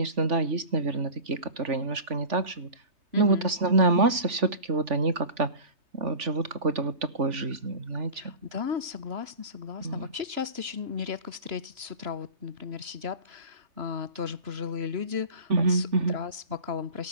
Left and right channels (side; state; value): left; late; 3.5 ms